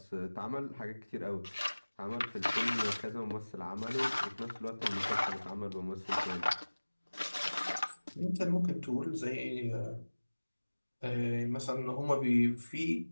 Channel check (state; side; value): inverted; both; correlation -1.00